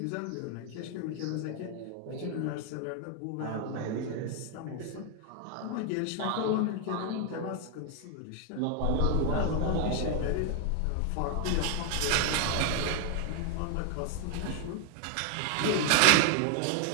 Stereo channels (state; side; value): different; both; correlation 0.00